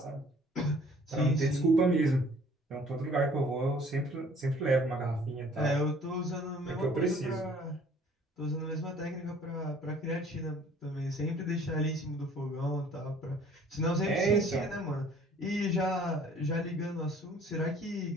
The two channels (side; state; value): both; normal; correlation 0.55